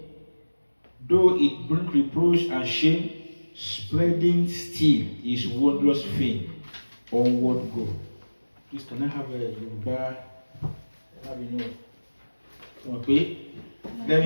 though it bring reproach and shame, spreading still his wondrous fame. Onward go. Please, can I have a Yoruba? Okay. Let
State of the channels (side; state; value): both; inverted; correlation -1.00